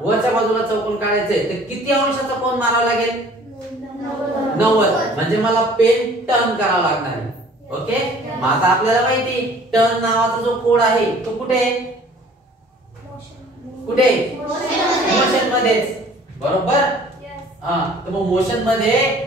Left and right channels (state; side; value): normal; both; correlation 0.52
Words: बाजूला चौकोन काढायचंय तर किती अंशाचा कोन मारावा लागेल? 90. म्हणजे मला पेन टर्न करावा लागणार आहे. ओके. मग आता आपल्याला माहिती टर्न नावाचा जो कोड आहे तो कुठे? कुठे? मोशन मध्येच बरोबर. हा तर मग मोशन मध्ये